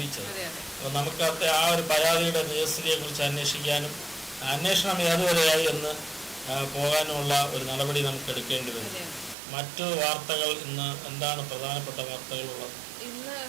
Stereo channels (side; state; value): left; drops out; at 9.3 s